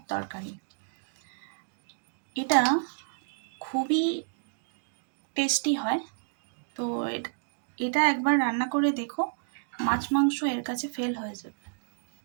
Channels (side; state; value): left; silent; digital silence